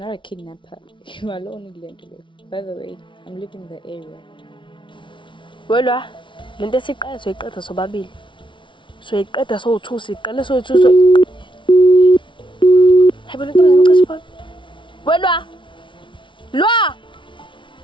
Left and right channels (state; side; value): late; right; 0.24 ms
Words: a kidnapper. You are alone in London. By the way, I'm leaving the area. Welwa, lento esiqala soyiqeda sobabili. Soyiqeda sowu2 siqala soyithu so. Hayibo lento ngicashe phone. Welwa. Lwa.